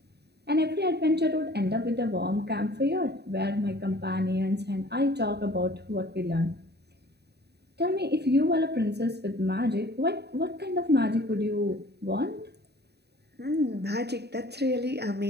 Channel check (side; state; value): left; late; 0.48 ms